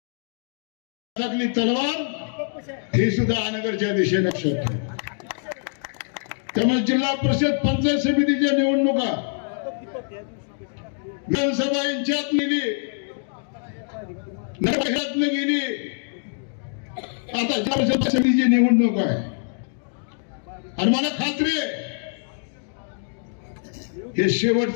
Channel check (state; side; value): silent; right; digital silence